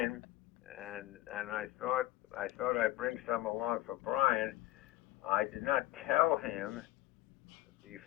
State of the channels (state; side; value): quieter; right; 16.7 dB